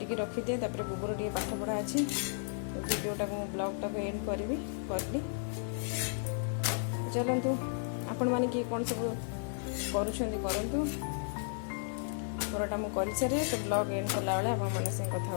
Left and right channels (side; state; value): right; silent; digital silence